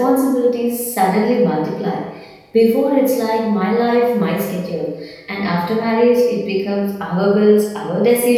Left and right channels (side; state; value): both; identical; correlation 1.00